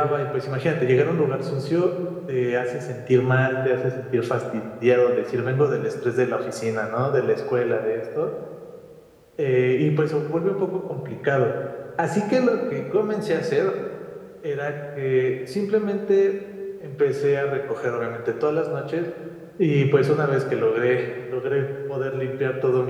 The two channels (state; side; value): identical; both; correlation 1.00